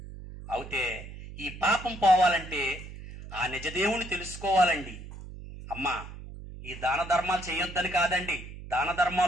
అయితే ఈ పాపం పోవాలంటే ఆ నిజదేవుని తెలుసుకోవాలండి. అమ్మా, ఈ దాన ధర్మాలు చేయొద్దని కాదండి, దాన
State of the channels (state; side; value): noise; right; hum, 13 dB below the sound